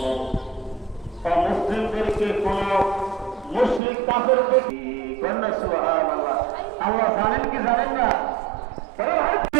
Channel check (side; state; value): left; drops out; at 3.8 s